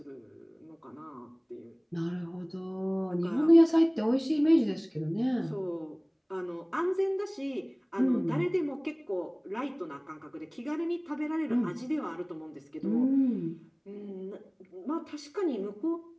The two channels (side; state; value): both; identical; correlation 1.00